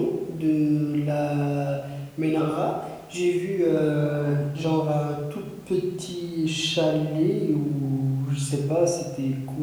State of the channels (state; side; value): identical; both; correlation 1.00